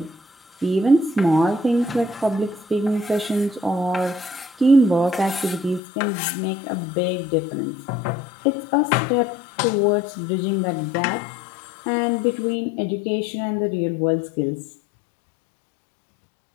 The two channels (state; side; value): drops out; right; at 5.8 s